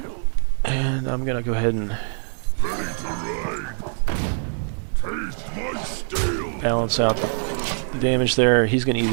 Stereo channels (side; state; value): left; silent; 63 dB below the other